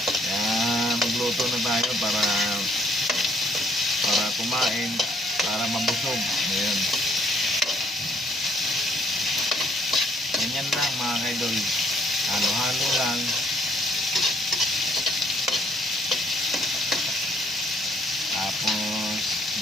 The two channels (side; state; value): both; normal; correlation 0.66